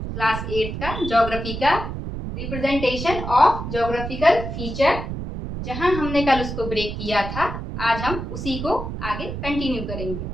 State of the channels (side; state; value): right; noise; rumble, 6 dB below the sound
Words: 8 का ज्योग्राफी का, रिप्रेजेंटेशन ऑफ ज्योग्राफिकल फीचर, जहां हमने कल उसको ब्रेक किया था, आज हम उसी को आगे कंटिन्यू करेंगे।